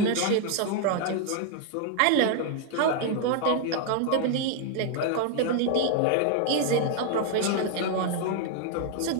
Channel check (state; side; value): different; both; correlation 0.00